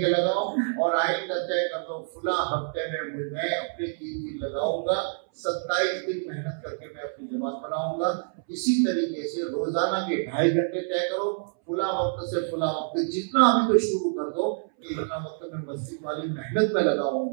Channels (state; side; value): silent; left; 60 dB below the other